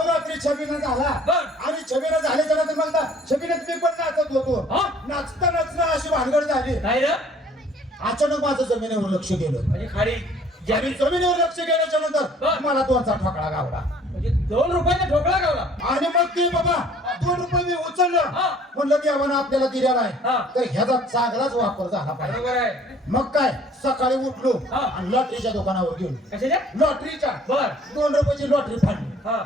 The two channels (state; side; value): normal; both; correlation 0.55